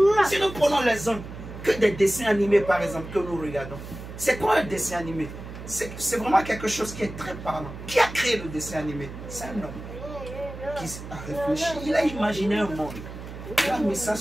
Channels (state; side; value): noise; right; hum, 12 dB below the sound